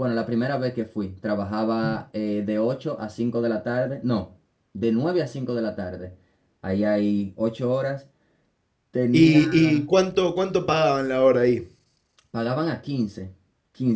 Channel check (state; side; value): identical; both; correlation 1.00